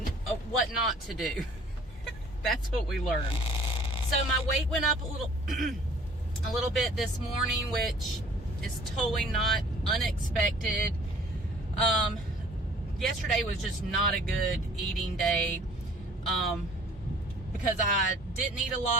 What not to do. That's what we learned. So my weight went up a little bit this morning, which is totally not unexpected. Yesterday was just not a good eating day. Because I didn't eat a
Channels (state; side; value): normal; both; correlation 0.52